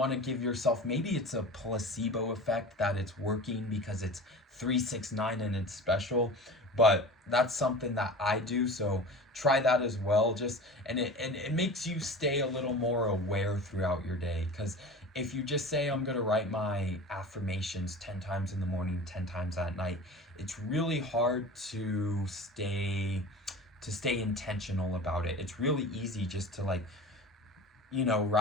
to give yourself, maybe it's a placebo effect that it's working because it's 369 and it's special, but that's something that I do. So try that as well. And it makes you stay a little more aware throughout your day, because if you just say, I'm going to write my affirmations 10 times in the morning, 10 times at night, it's really hard to stay intentional about it. It's really easy just to like,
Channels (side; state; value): both; normal; correlation 0.36